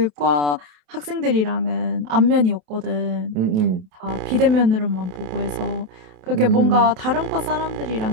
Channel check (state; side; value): late; left; 27 ms